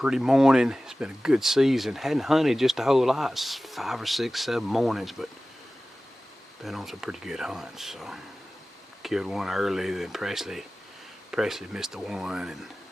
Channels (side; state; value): both; normal; correlation 0.96